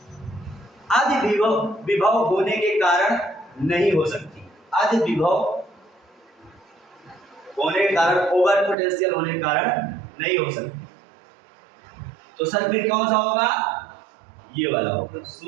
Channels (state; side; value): drops out; left; at 8.8 s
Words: अधि विभव होने के कारण नहीं हो सकती। अधि विभव होने के कारण, ओवर पोटेंशियल होने के कारण नहीं हो सकती। तो सर फिर कौन सा होगा? ये वाला होगा।